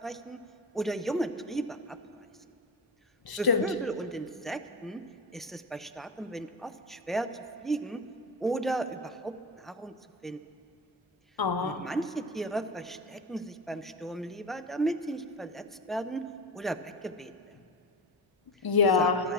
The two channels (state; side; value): normal; both; correlation 0.25